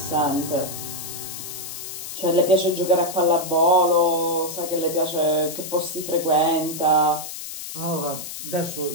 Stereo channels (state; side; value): noise; left; hiss, 9 dB below the sound